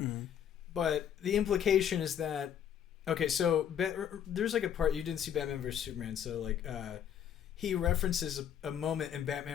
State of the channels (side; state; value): right; quieter; 9.2 dB